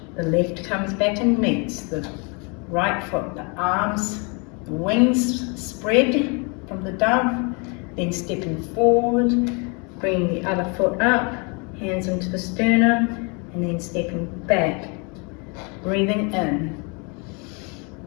The left comes back and meets the right foot, the arms, the wings spread from the dove, then stepping forward, bringing the other foot up, hands into the sternum, and then stepping back, breathing in,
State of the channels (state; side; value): quieter; right; 33.0 dB